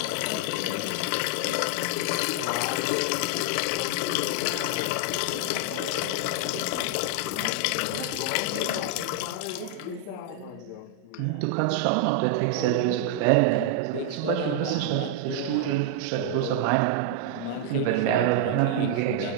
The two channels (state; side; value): different; both; correlation 0.00